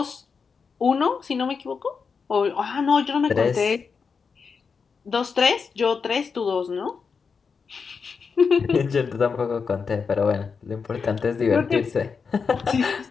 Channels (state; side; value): quieter; right; 5.5 dB